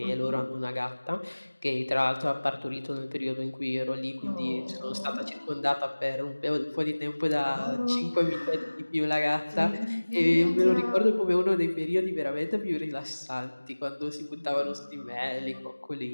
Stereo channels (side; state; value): both; inverted; correlation -1.00